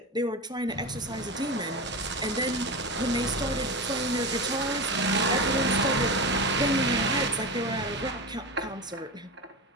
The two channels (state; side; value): normal; both; correlation 0.23